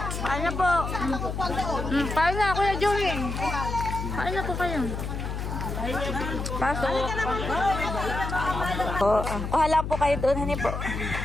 Ano po? Paano na, Kuya Joey? Paano po kayo? Pasok. Kuha lang po kayo doon, hani po.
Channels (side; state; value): left; noise; hum, 4 dB below the sound